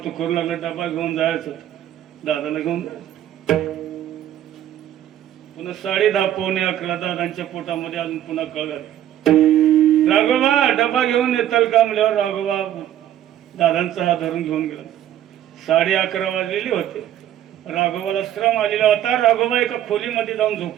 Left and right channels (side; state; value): left; quieter; 11.7 dB